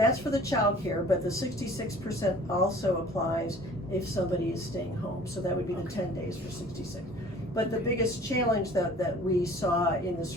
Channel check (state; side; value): normal; both; correlation 0.48